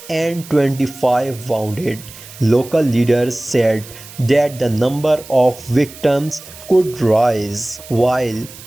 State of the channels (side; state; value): right; noise; hiss, 18 dB below the sound